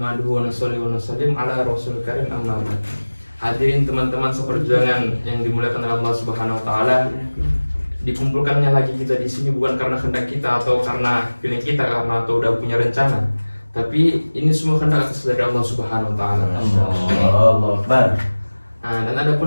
wa nusalli wa nusallim ala rasulil karim amma ba'd. Hadirin teman-teman seperjuangan yang dimuliakan oleh Allah Subhanahu wa taala. Dikumpulkannya lagi kita di sini bukan karena kehendak kita atau karena feeling kita karena atau udah punya rencana. Tapi ini semua kehendak dari Allah Subhanahu wa taala. Allahu Akbar. Nah, dan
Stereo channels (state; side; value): inverted; both; correlation -1.00